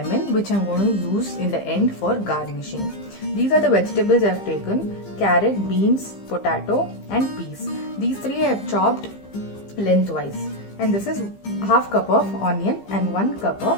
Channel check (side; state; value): right; late; 15 ms